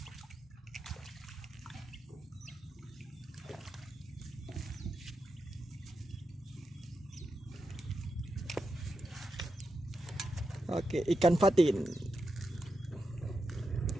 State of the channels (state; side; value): normal; both; correlation 0.87